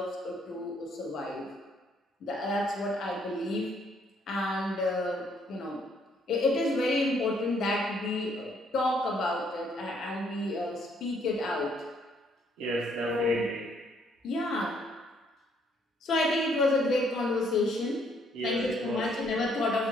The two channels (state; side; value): normal; both; correlation 0.68